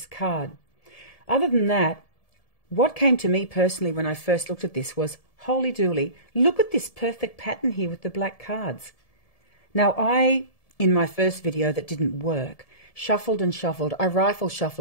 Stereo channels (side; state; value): right; late; 1.7 ms